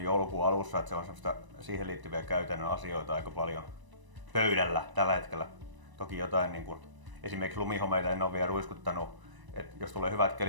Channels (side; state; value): left; late; 1.0 ms